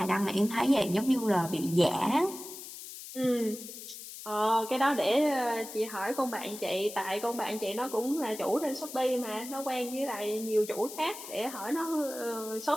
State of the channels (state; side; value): noise; left; hiss, 12 dB below the sound